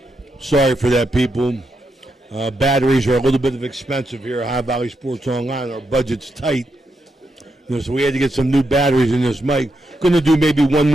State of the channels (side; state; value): both; normal; correlation 0.83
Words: Sorry for that, people. Batteries are a little bit expensive here at High Valley Sports Online. Our budget's tight. So we had to get some new batteries in this mic. Going to do maybe one